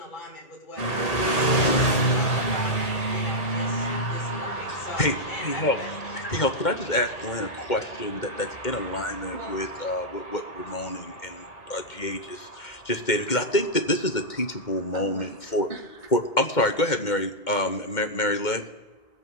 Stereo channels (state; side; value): late; right; 2.1 ms